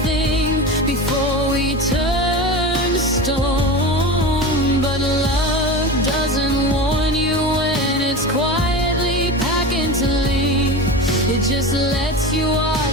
thing before we turned to stone. But love doesn't warn you when it's quietly packing to leave. It just lets you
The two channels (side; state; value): both; normal; correlation 0.27